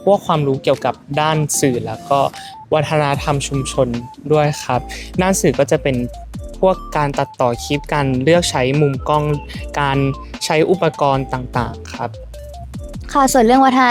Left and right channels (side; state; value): both; identical; correlation 1.00